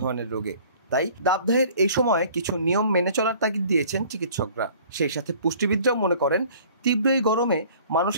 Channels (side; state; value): both; inverted; correlation -0.51